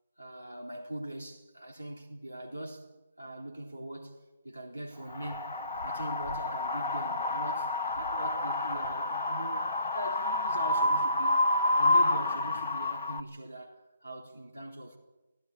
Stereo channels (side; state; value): both; inverted; correlation -0.62